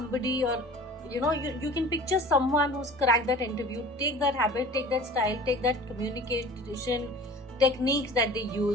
or you can picture someone who's cracked that interview. Take that habit, take that style, take that communication techniques that they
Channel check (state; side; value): normal; both; correlation 0.42